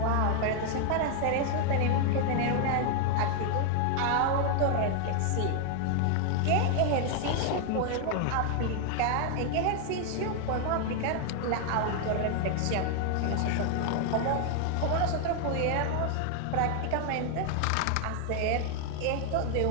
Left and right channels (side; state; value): both; different; correlation 0.00